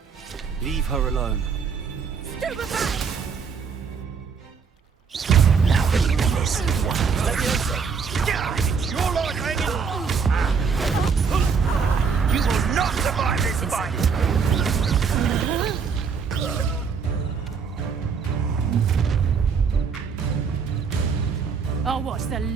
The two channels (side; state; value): left; quieter; 5.8 dB